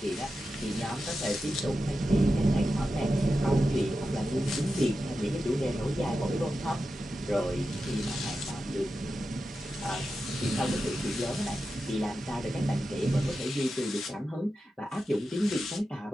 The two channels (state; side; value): normal; both; correlation 0.91